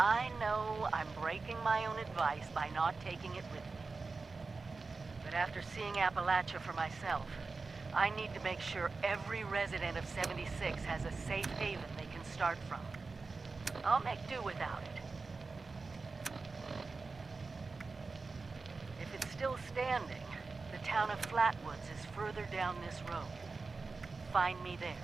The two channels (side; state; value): left; quieter; 4.1 dB